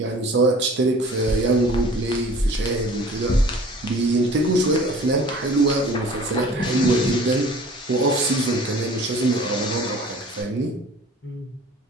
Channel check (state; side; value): normal; both; correlation 0.47